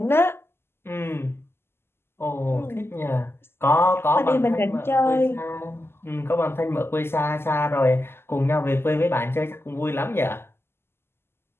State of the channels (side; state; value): right; late; 0.12 ms